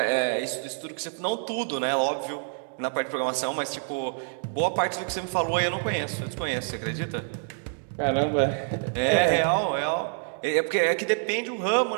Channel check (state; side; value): silent; left; digital silence